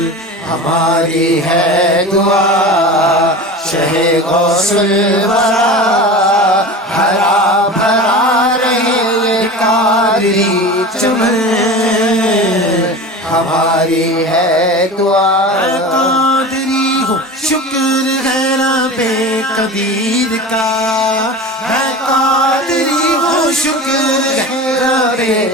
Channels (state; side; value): normal; both; correlation 0.32